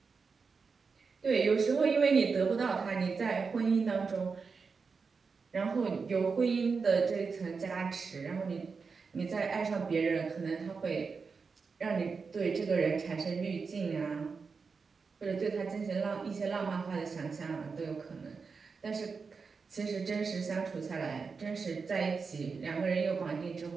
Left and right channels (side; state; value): left; quieter; 5.0 dB